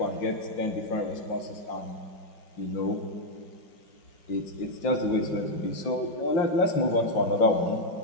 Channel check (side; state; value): right; late; 5.8 ms